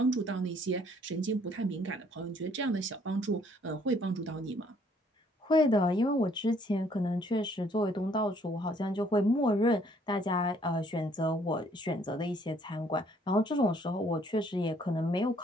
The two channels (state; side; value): normal; both; correlation 0.63